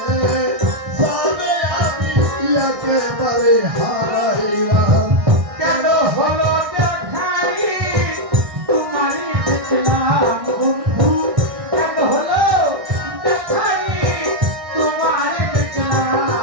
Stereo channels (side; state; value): left; late; 1.6 ms